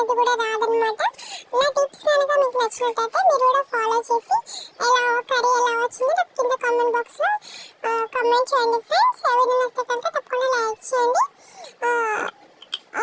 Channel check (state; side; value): identical; both; correlation 1.00